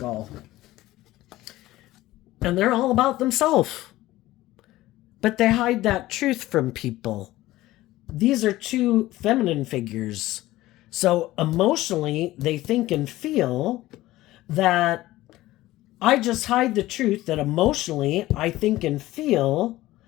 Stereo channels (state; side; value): quieter; right; 16.7 dB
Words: And they're all about themselves. But they hide that truth from people. These are two feminine figures. So emotionally, they think and feel that I just hide the truth that emotionally I think and feel